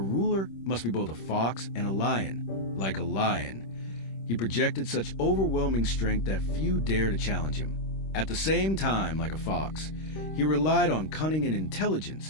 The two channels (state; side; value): late; right; 26 ms